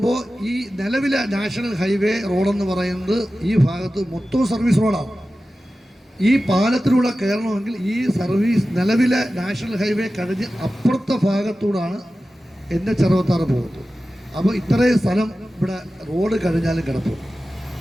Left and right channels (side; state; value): both; normal; correlation 0.94